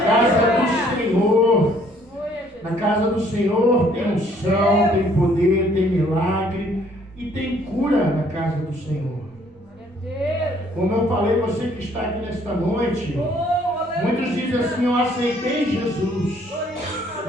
casa do Senhor. Na casa do Senhor tem unção, tem poder, tem milagre e tem cura na casa do Senhor. Como eu falei, você que está aqui nesta noite, muitos dizem assim: eu aceitei Jesus.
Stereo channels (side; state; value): both; normal; correlation 0.62